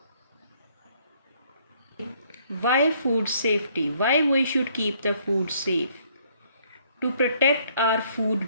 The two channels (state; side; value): inverted; both; correlation -0.65